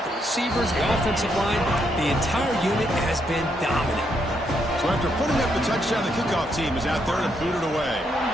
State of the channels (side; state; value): both; normal; correlation 0.77